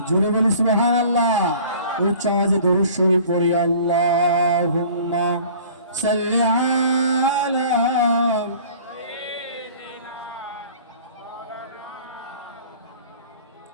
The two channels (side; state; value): both; inverted; correlation -0.47